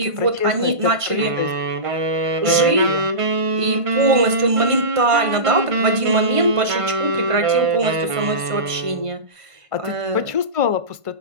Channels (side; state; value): left; late; 1.5 ms